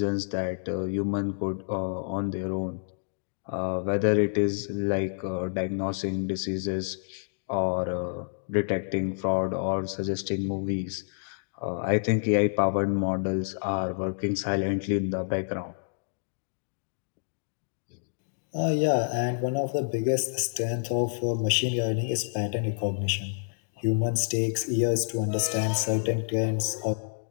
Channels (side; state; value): right; silent; digital silence